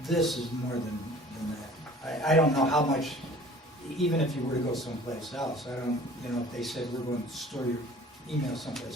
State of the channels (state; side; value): normal; both; correlation 0.48